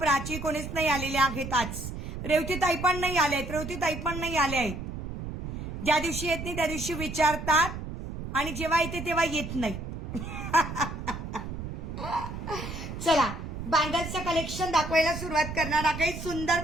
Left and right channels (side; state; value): right; noise; rumble, 7 dB below the sound